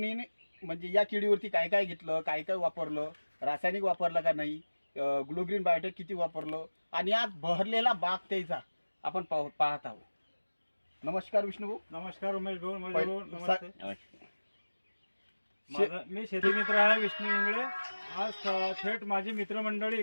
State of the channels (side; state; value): both; inverted; correlation -1.00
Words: म्हणजे या किडीवरती काय काय घेतलं, काय काय वापरलं, रासायनिक वापरलं का नाही, ग्लोग्रीन बायोटेक किती वापरलं, आणि आज बहरलेला बाग त्याचा आपण पाहत आहोत. नमस्कार विष्णुभाऊ. नमस्कार उमेश भाऊ. नमस्ते. मी शेती मित्र आहे विष्णू इंगळे. आज थेट माझी मित्रमंडळी